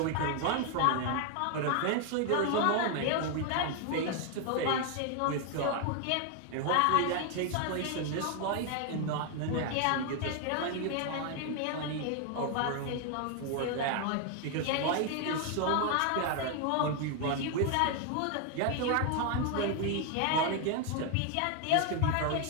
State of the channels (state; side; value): different; both; correlation 0.01